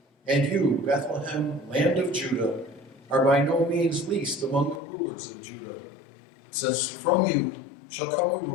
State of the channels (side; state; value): right; drops out; at 4.8 s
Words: 'And you, Bethlehem, land of Judah, are by no means least among the rulers of Judah, since from you shall come a